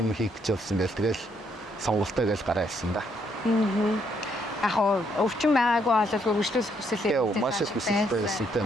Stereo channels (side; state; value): both; normal; correlation 0.72